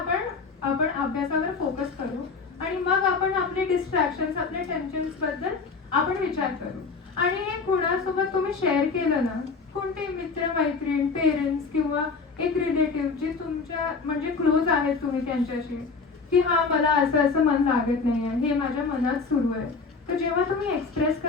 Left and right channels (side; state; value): right; quieter; 4.6 dB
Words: अभ्यासावर फोकस करू आणि मग आपण आपले डिस्ट्रॅक्शन, आपले टेन्शन्स बद्दल आपण विचार करू. आणि हे कुणासोबत तुम्ही शेअर केलं ना, कोणते मित्र मैत्रीण, पेरेंट्स किंवा एक रिलेटिव्ह जे तुमच्या म्हणजे क्लोज आहेत तुम्ही त्यांच्याशी, की हा मला असं मन लागत नाहीये, हे माझ्या मनात सुरू आहे. तर जेव्हा तुम्ही एक्सप्रेस